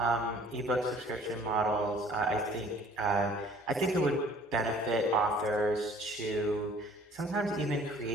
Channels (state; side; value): normal; both; correlation 0.54